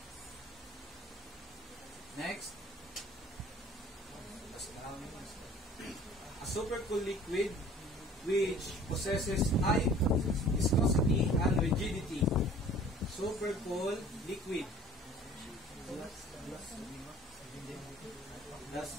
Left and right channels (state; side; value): normal; both; correlation 0.49